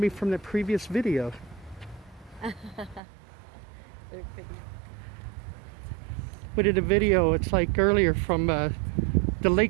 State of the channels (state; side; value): drops out; left; at 3.0 s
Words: from the previous video. They're pretty. We did a video, it's like earlier from the